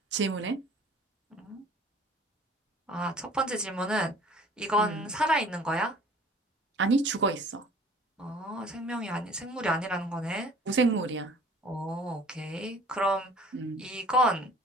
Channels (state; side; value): normal; both; correlation 0.50